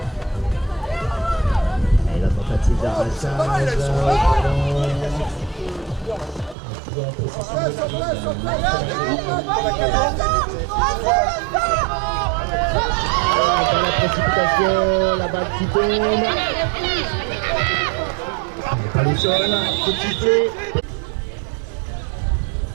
Et la tentative d'arrachage. Dans la précipitation, la balle qui tombe. Pas le sol, tout de suite.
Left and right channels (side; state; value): left; drops out; at 6.6 s